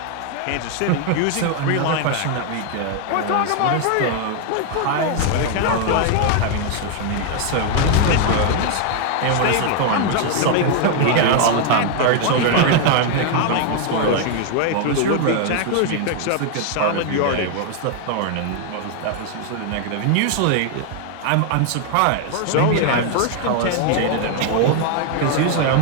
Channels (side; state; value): both; different; correlation 0.00